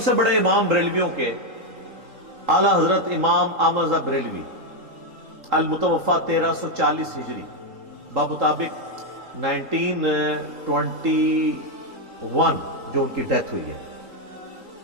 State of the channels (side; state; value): left; late; 3.8 ms